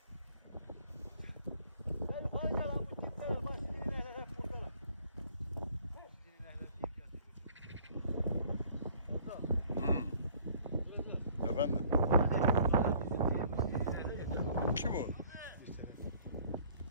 Gel yukarı gel lan bu tipler bak iğneler hep buradalar. Efendim? Kim o?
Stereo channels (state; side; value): inverted; both; correlation -0.56